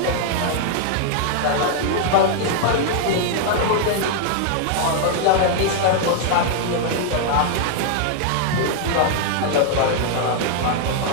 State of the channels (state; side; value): different; both; correlation 0.00